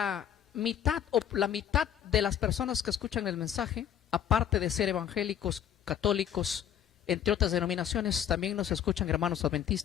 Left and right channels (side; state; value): right; quieter; 9.6 dB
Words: mitad o la mitad de las personas que escuchan el mensaje, aparte de ser evangélicos, católicos, entre otras denominaciones, también nos escuchan hermanos